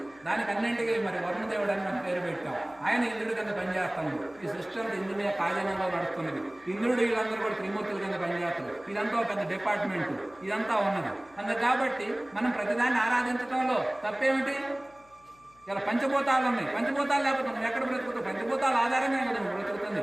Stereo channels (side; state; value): left; noise; hum, 29 dB below the sound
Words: దానికి అన్నింటికి మరి వరుణదేవుడు అని మనం పేరు పెట్టాం. ఆయన ఇంద్రుడి కింద పనిచేస్తాడు. ఈ సృష్టి అంతా ఇంద్రుని కార్యంలో నడుస్తున్నది. ఇంద్రుడు వీళ్ళందరూ కూడా త్రిమూర్తుల కింద పనిచేస్తారు. ఇదంతా పెద్ద డిపార్ట్మెంట్, ఇదంతా ఉన్నది. అందుకు కాబట్టి మనం ప్రతిదాన్ని ఆరాధించడంలో తప్పేమిటి? ఇలా పంచభూతాలు ఉన్నాయి. పంచభూతాలు లేకపోతే మనం ఎక్కడ బ్రతుకుతాం? పంచభూతాల ఆధారంగా కదా మనం బ్రతుకుతుంది.